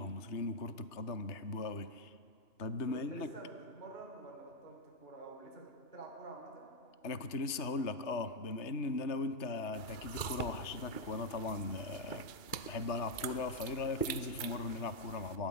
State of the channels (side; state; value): right; late; 2.8 ms